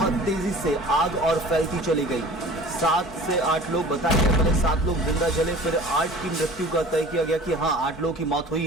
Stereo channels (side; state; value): both; normal; correlation 0.44